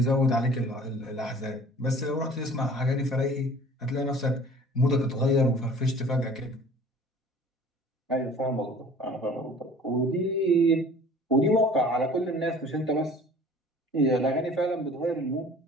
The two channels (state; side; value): normal; both; correlation 0.47